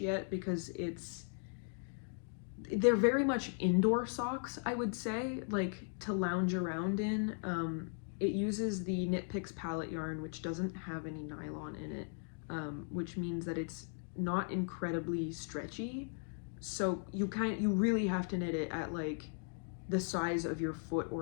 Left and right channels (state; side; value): silent; right; 53 dB below the other